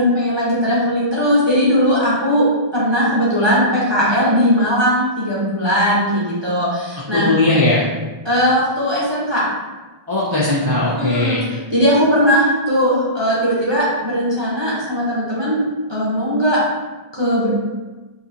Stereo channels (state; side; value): late; left; 1.2 ms